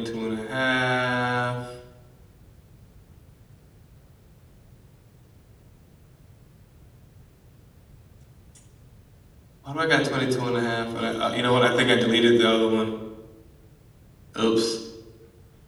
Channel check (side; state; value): both; identical; correlation 1.00